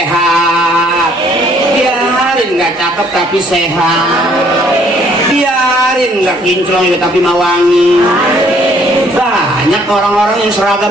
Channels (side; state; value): both; normal; correlation 0.63